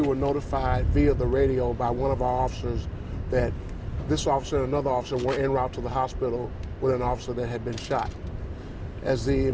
notified via the radio by one of our officers that this officer and another officer were en route to the hospital with an officer that had been shot. As the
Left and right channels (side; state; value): both; identical; correlation 1.00